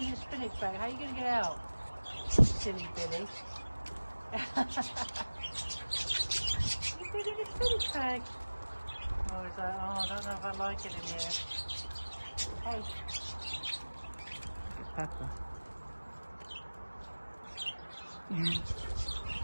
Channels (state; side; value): inverted; both; correlation -1.00